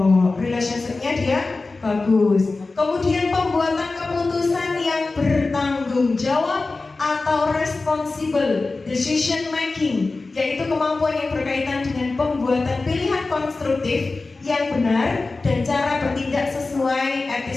Relationship-nya dia bagus. Kemudian pembuatan keputusan yang bertanggung jawab atau responsible decision making, yaitu kemampuan yang berkaitan dengan pembuatan pilihan konstruktif yang benar dan cara bertindak sesuai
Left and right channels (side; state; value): right; quieter; 3.6 dB